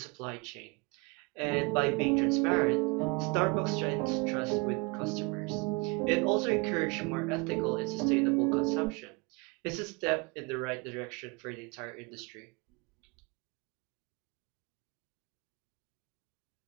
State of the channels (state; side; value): quieter; left; 28.8 dB